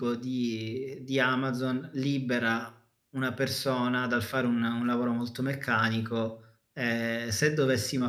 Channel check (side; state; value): both; identical; correlation 1.00